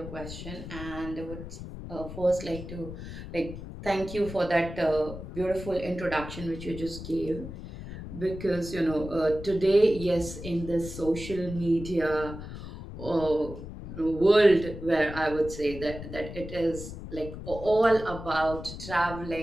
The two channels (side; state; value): left; noise; rumble, 10 dB below the sound